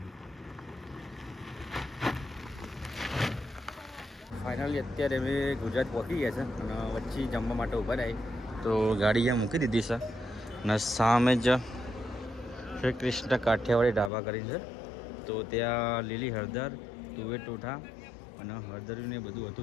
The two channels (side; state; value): right; drops out; at 14.1 s